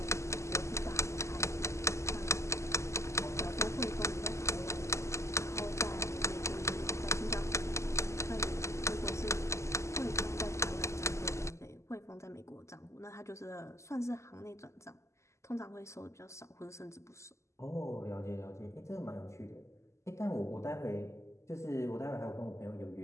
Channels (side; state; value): right; late; 0.14 ms